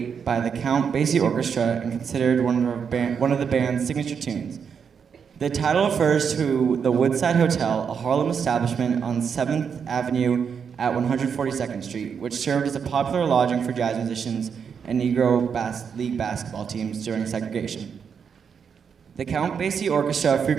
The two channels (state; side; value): quieter; left; 6.8 dB